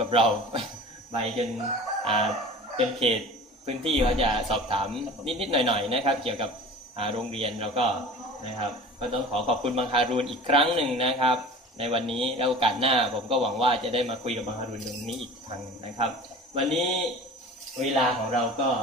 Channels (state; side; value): normal; both; correlation 0.39